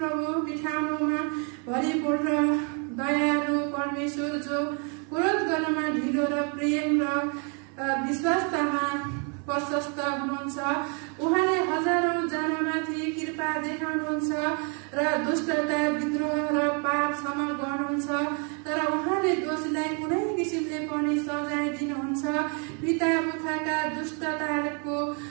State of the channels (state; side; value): quieter; left; 37.3 dB